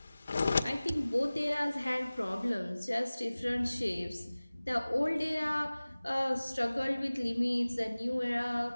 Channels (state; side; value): inverted; both; correlation -0.99